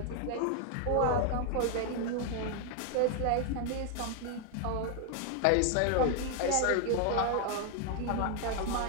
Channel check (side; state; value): both; different; correlation 0.00